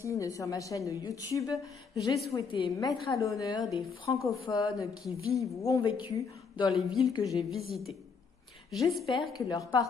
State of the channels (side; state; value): right; quieter; 5.5 dB